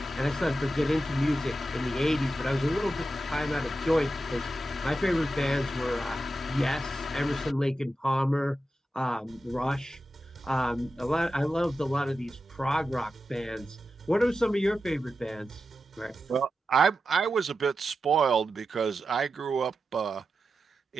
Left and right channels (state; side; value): normal; both; correlation 0.90